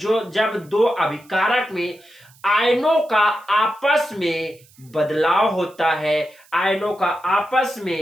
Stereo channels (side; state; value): right; noise; hiss, 28 dB below the sound